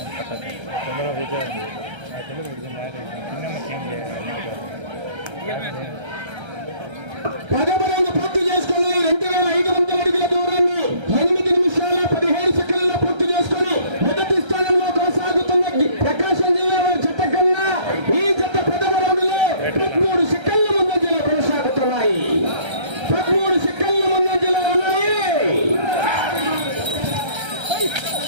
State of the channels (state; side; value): late; left; 1.3 ms